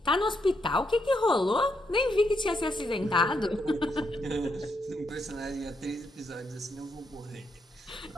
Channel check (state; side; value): normal; both; correlation 0.79